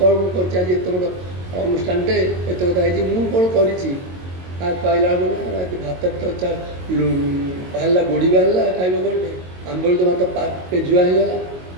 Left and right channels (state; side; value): late; left; 22 ms